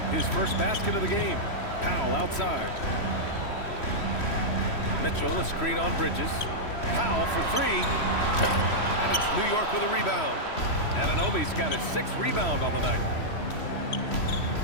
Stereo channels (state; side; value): late; right; 3.1 ms